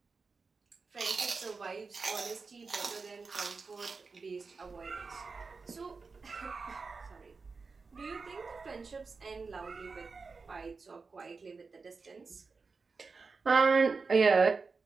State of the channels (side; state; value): left; quieter; 4.5 dB